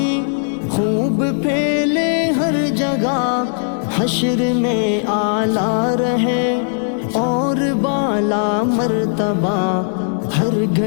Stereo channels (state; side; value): silent; right; 68 dB below the other